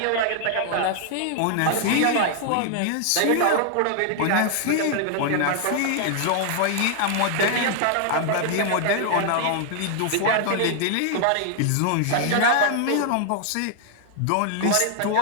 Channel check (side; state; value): both; different; correlation 0.00